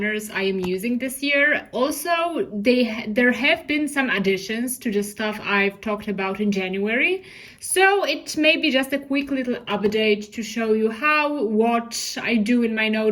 I am using this year. Also, there have been some additions to the stuff I've talked about in January. So it may be just a quick little update to show you what I do in my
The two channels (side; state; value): both; identical; correlation 1.00